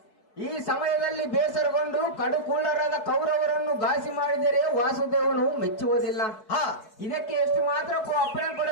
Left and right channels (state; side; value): late; right; 4.6 ms